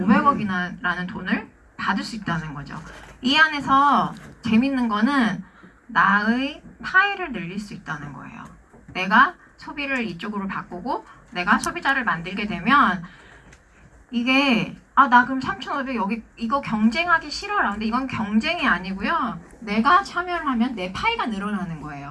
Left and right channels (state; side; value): identical; both; correlation 1.00